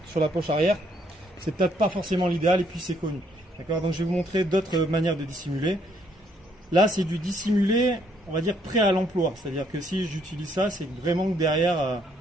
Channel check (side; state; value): both; normal; correlation 0.69